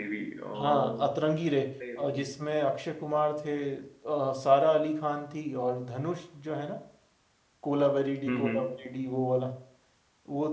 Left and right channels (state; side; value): identical; both; correlation 1.00